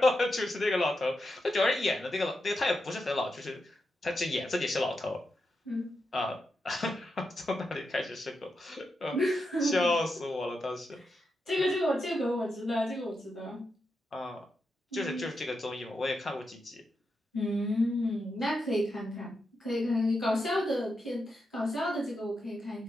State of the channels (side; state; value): both; normal; correlation 0.86